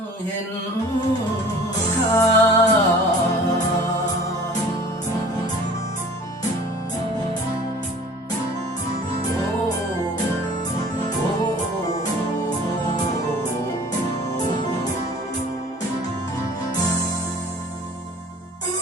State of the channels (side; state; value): both; normal; correlation 0.47